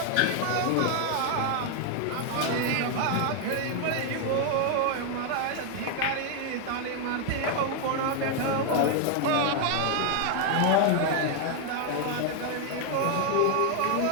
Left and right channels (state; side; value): different; both; correlation 0.00